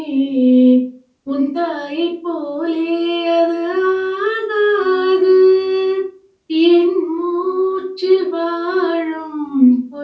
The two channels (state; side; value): identical; both; correlation 1.00